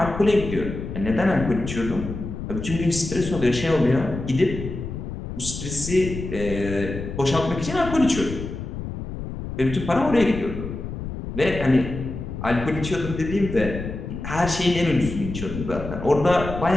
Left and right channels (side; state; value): left; noise; rumble, 7 dB below the sound